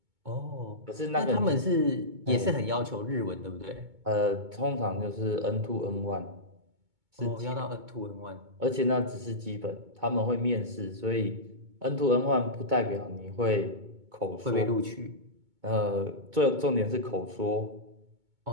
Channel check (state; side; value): late; left; 2.2 ms